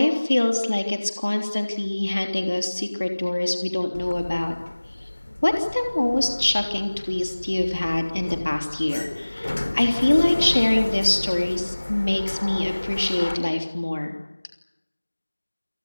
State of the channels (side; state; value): both; inverted; correlation -1.00